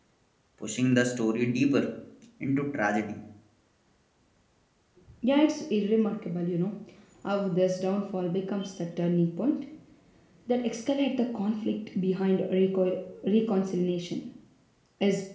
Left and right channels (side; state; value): both; identical; correlation 1.00